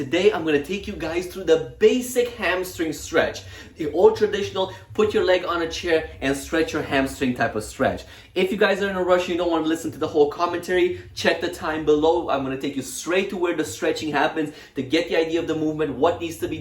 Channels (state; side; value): identical; both; correlation 1.00